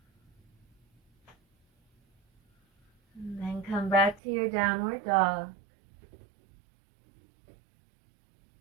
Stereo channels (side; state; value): left; drops out; at 4.2 s